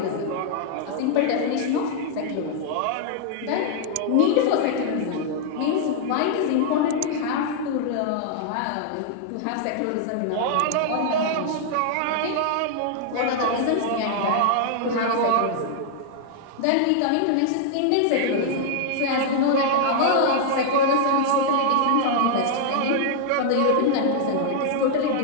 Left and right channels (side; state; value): both; different; correlation -0.01